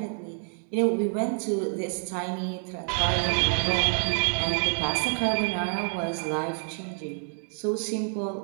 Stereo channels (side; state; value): left; silent; 59 dB below the other